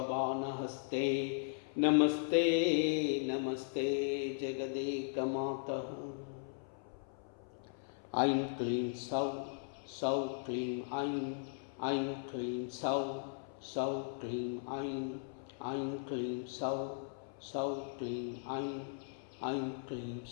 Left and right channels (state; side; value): silent; right; 53 dB below the other